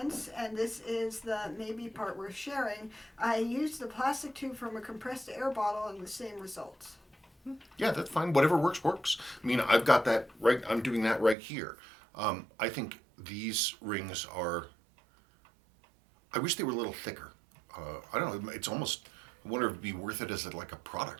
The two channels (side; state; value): left; drops out; at 11.4 s